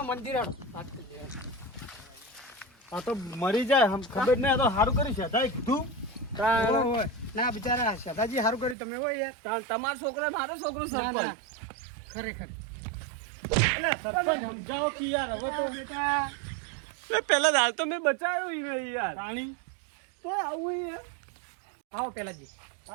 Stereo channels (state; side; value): drops out; left; at 8.8 s